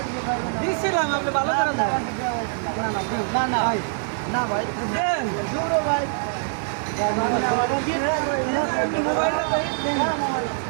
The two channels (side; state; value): left; silent; 63 dB below the other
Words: ভাই দিছিলাম আপনি ভালো করে দেন না না ভাই না ভাই দেন পুরো ভাই